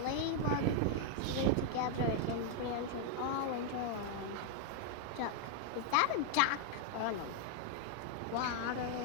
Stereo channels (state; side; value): different; both; correlation 0.00